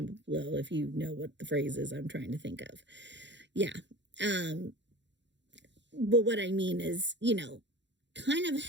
below if you know what the phrase is I'm trying to think of. Yeah. But what I mean is, kind of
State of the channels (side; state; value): left; late; 0.52 ms